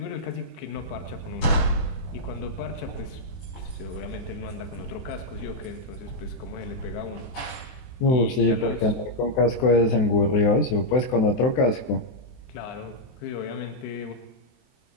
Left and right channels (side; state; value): right; late; 23 ms